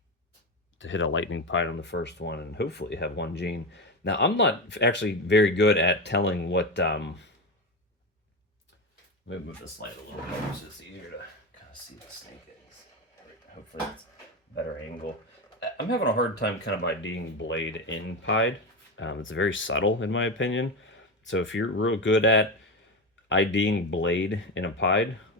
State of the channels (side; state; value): both; normal; correlation 0.18